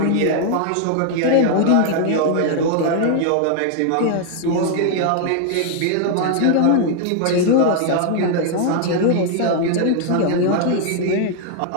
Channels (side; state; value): both; different; correlation 0.00